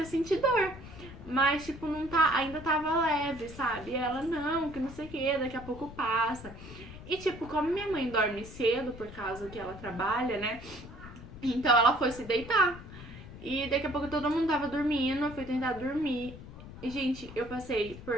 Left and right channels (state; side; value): noise; left; rumble, 14 dB below the sound